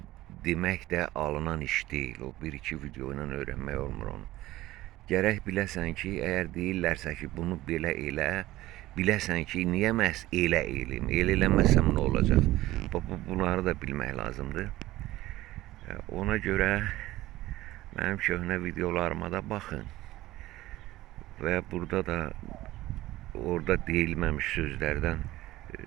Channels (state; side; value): quieter; left; 16.6 dB